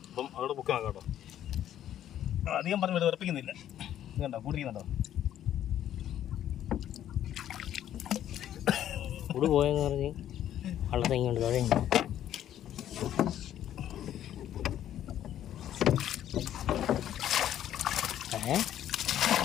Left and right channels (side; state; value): right; quieter; 11.3 dB